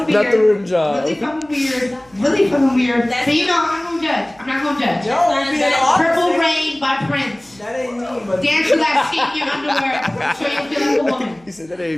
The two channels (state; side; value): noise; right; hum, 30 dB below the sound